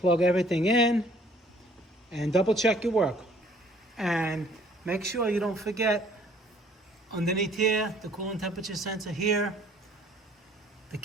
everything in, and double check your work. And make sure you don't forget underneath here, the coolant temperature sensor here, the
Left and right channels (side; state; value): both; normal; correlation 0.57